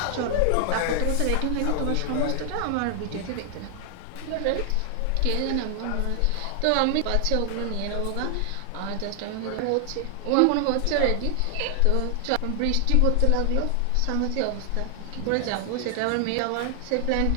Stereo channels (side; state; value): both; different; correlation 0.00